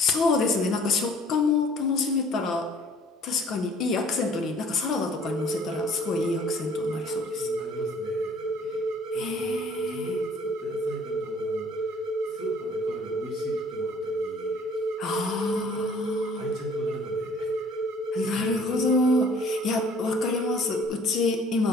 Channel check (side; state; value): both; normal; correlation 0.54